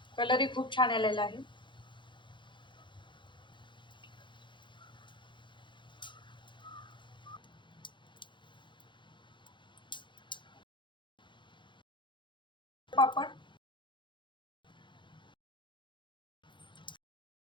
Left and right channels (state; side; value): late; right; 0.23 ms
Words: कलरही खूप छान आलेला आहे. पापड